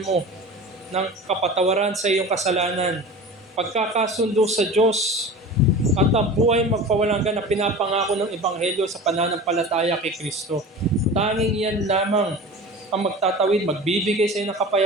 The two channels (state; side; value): normal; both; correlation 0.35